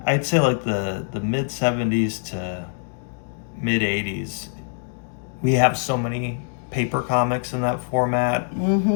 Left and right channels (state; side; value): silent; right; digital silence